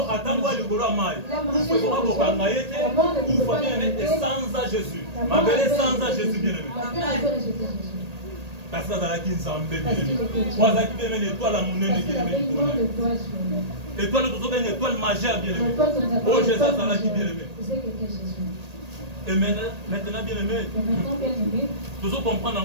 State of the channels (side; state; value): left; late; 1.8 ms